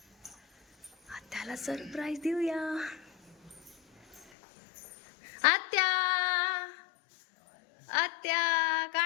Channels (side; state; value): right; drops out; at 4.2 s